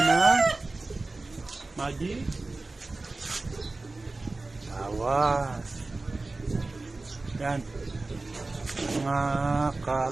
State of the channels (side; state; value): left; quieter; 3.3 dB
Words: ng magic tawas. Yan. Mga